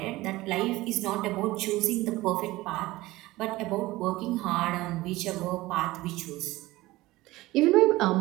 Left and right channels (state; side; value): quieter; left; 18.7 dB